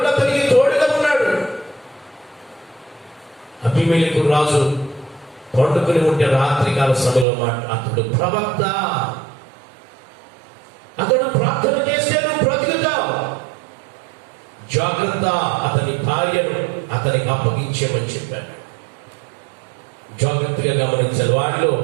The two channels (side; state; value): left; drops out; at 7.2 s